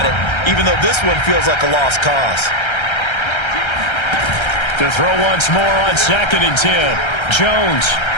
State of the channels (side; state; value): right; late; 1.3 ms